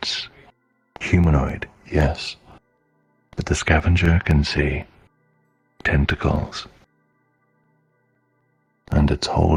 humanoid, yes. But the Scavenger can see tentacles. And it's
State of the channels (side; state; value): both; identical; correlation 1.00